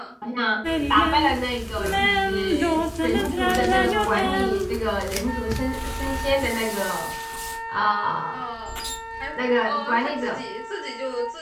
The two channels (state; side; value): identical; both; correlation 1.00